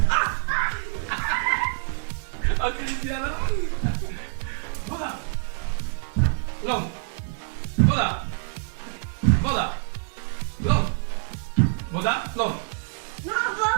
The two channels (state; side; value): silent; left; digital silence